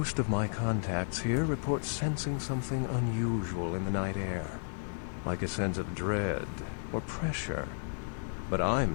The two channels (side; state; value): right; silent; digital silence